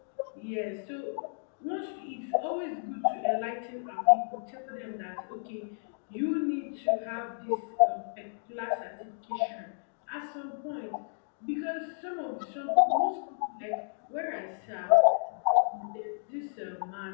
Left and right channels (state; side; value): silent; right; digital silence